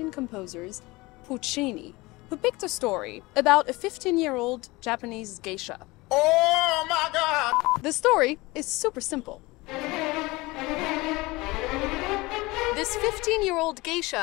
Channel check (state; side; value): quieter; right; 22.2 dB